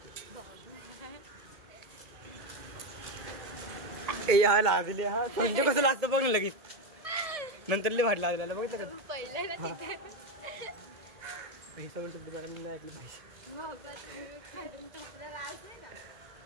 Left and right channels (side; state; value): left; late; 2.2 ms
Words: हा लाजले. हा संजय कसं लागतं बघ लगेच. नंतर लय भारी लागलेला बघितलं का? पहिलं ना तिथे हे सगळं शब्द मॅडम नाही ऐकलं पाहिजे. बाबा तुम्ही काढून टाकला राज आहे ना.